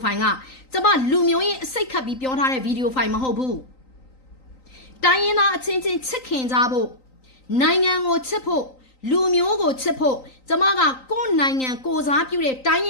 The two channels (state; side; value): late; right; 3.9 ms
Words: ဖိုင်ကကျမလူမျိုးရဲ့အစိတ်ခတ်ပြီးပြောထားတဲ့ဗီဒီယိုဖိုင်မဟုတ်ဘူးတိုင်းရင်းသားအချင်းချင်းချစ်ခင်ကြဖို့နိုင်ငံကိုချစ်ဖို့လူမျိုးကိုချစ်ဖို့ကျမကကိုယ့်နိုင်ငံကိုစားပြုတဲ့တိုင်းရ